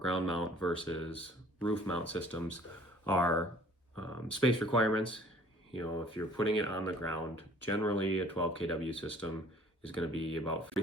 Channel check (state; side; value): normal; both; correlation 0.54